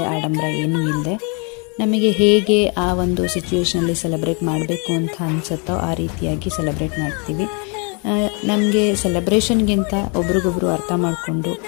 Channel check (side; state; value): right; quieter; 35.0 dB